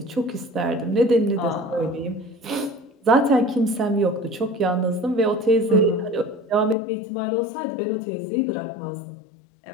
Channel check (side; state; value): right; drops out; at 6.8 s